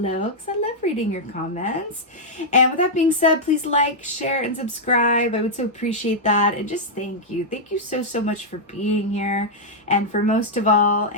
because I love reading your comments. And with that being said, please like, share, and subscribe. I would so appreciate that. And just thank you. Thank you so, so much for being here. And for most of all,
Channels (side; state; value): both; normal; correlation -0.05